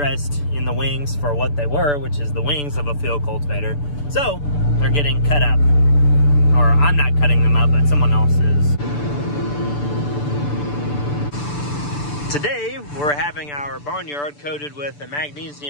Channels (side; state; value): right; late; 6.9 ms